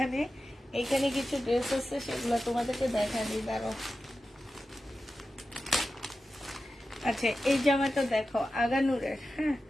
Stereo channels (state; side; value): normal; both; correlation 0.92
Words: এখানে কিছু ড্রেস আছে, সেগুলো তোমাদেরকে দেখা দিই, দাঁড়াও। আচ্ছা, এই জামাটা দেখো আগানুরের। হ্যাঁ,